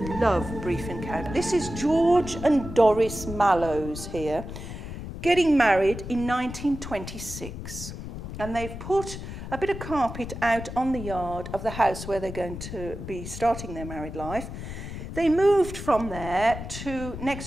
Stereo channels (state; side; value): noise; left; rumble, 9 dB below the sound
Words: love Brief Encounter. This is George and Doris Mallows here, getting married in 1926. And they've put a bit of carpet out on the yard of the house where they're going to be starting their married life. They moved from there to